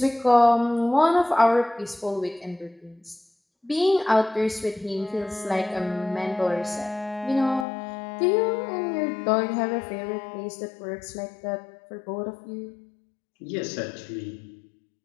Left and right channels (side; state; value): right; drops out; at 7.7 s